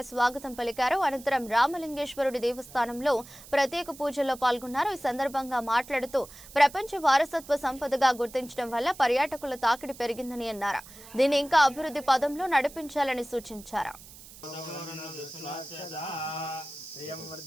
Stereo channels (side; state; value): right; noise; hiss, 18 dB below the sound